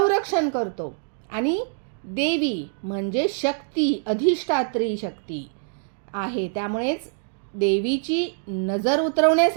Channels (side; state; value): left; silent; digital silence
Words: करतो. आणि देवी म्हणजे शक्ती, अधिष्ठात्री शक्ती आहे. त्यामुळेच देवीची नजर